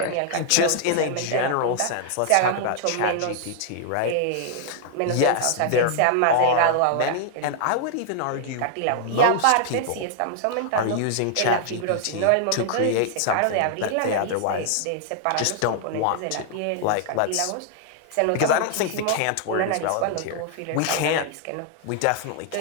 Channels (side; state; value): both; different; correlation 0.00